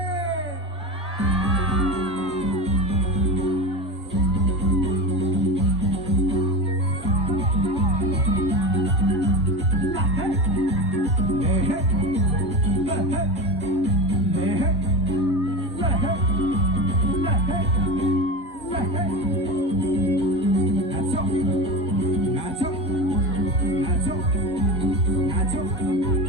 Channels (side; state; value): both; normal; correlation 0.25